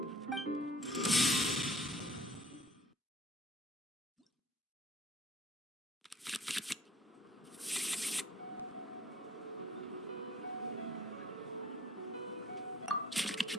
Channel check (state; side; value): normal; both; correlation 0.54